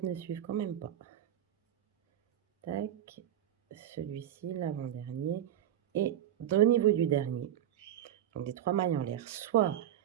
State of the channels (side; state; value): left; quieter; 11.2 dB